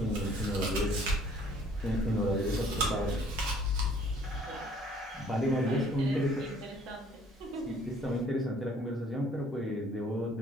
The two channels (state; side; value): normal; both; correlation 0.58